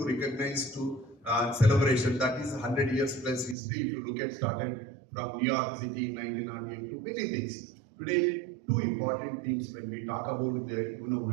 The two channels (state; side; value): drops out; left; at 3.6 s